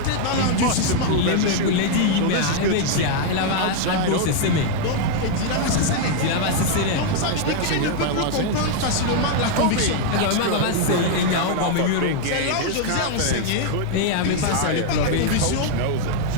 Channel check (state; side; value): different; both; correlation 0.00